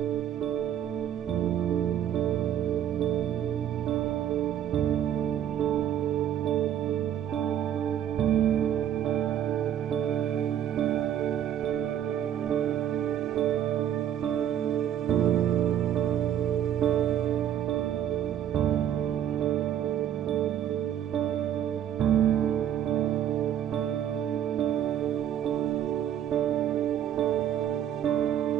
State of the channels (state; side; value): quieter; left; 10.3 dB